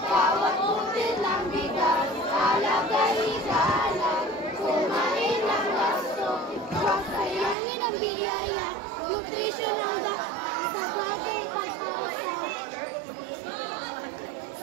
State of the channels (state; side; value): drops out; left; at 7.6 s